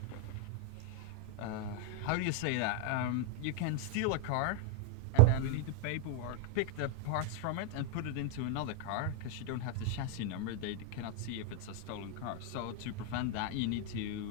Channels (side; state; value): both; different; correlation 0.00